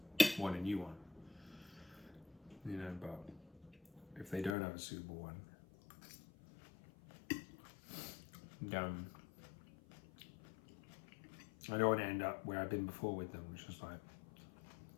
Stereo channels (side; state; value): right; drops out; at 4.5 s